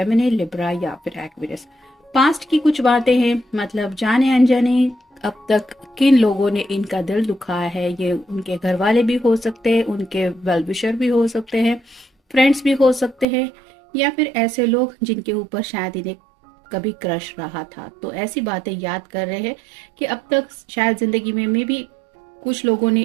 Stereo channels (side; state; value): left; drops out; at 13.2 s